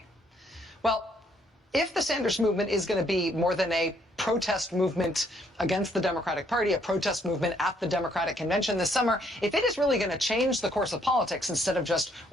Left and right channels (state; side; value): normal; both; correlation 0.68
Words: Well, if the Sanders movement is going to be more than a protest movement against the Democratic Party, a protest movement at the Democratic Convention this summer, if it is really going to change the course of politics instead of just